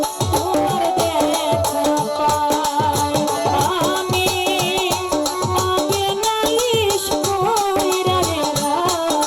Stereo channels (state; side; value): identical; both; correlation 1.00